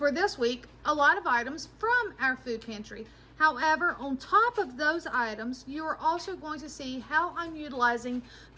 this week a lot of items from our food pantry. However, on top of those items, you are also going to see how I'm utilizing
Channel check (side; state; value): both; identical; correlation 1.00